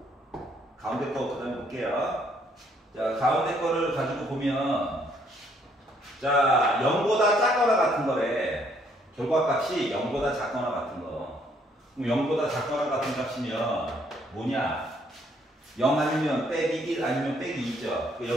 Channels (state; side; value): normal; both; correlation 0.67